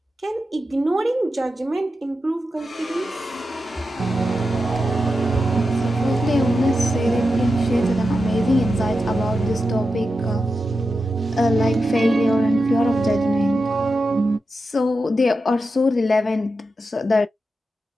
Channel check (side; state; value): both; normal; correlation 0.89